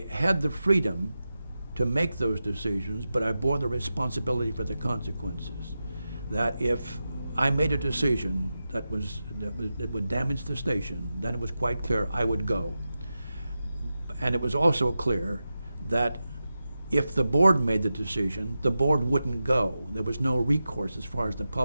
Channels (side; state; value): both; inverted; correlation -0.92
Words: had the freedom to make those decisions, but I bore the responsibility for the consequences. That if I made a decision that would damage the station, then it was quite clear I would go. And it was also clear that if the board made the decision, the board wouldn't go. There was no recourse as far as the